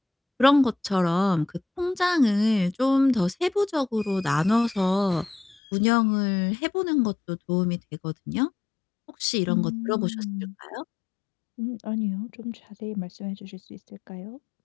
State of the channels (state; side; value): drops out; right; at 5.6 s